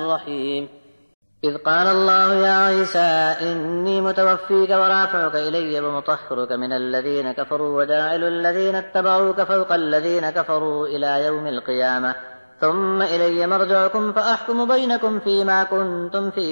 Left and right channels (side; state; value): both; inverted; correlation -1.00